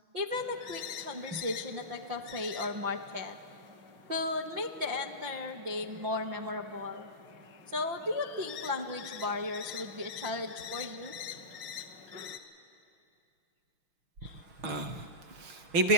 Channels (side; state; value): left; late; 5.8 ms